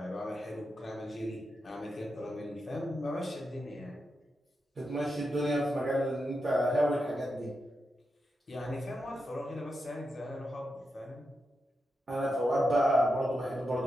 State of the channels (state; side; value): normal; both; correlation 0.87